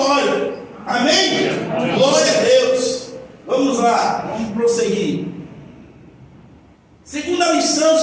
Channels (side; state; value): both; identical; correlation 1.00